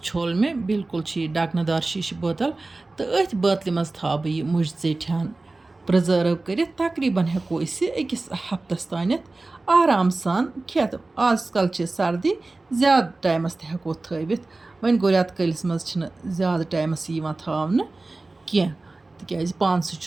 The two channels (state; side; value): quieter; left; 3.2 dB